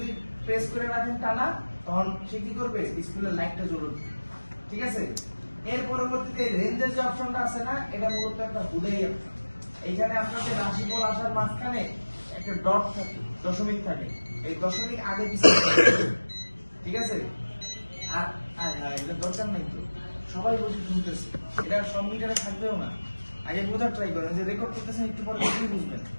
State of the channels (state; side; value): inverted; both; correlation -1.00